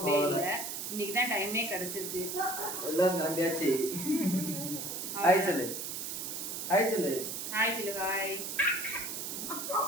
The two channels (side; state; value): right; noise; hiss, 5 dB below the sound